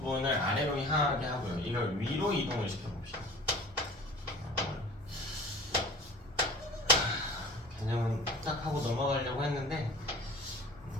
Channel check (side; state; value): both; normal; correlation 0.42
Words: 아래로 향하게 하고요. 이걸 위로 이동을 시켜봅시다. 개념은 딱 하고 넘어가려고 했는데